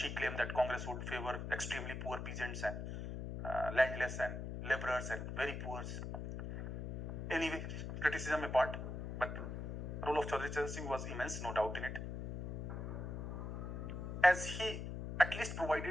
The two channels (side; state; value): left; noise; hum, 5 dB below the sound